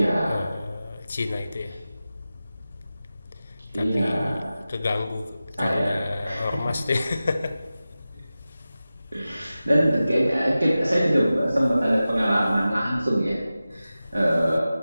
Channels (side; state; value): both; inverted; correlation -0.95